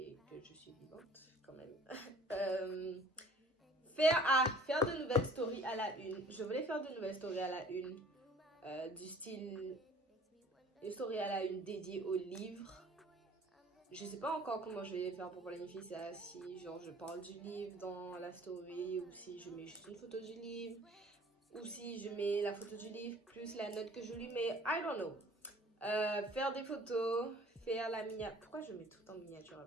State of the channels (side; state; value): both; normal; correlation 0.51